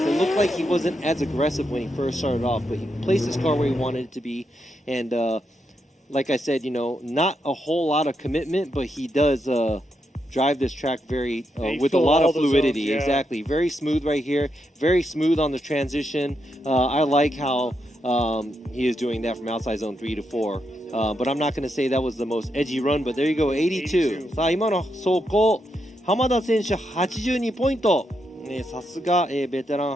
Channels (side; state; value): both; normal; correlation 0.82